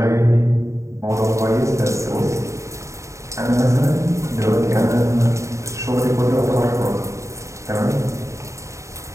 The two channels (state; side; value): late; left; 0.14 ms